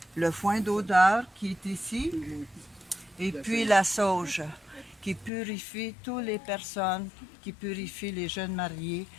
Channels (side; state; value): right; drops out; at 5.3 s